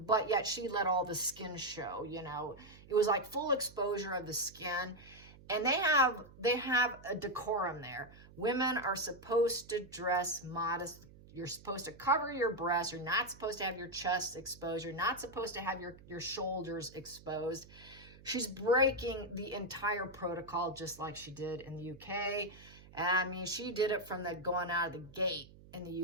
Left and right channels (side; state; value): right; noise; hum, 21 dB below the sound